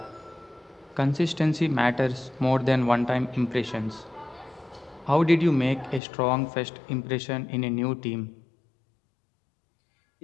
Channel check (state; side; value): drops out; right; at 6.0 s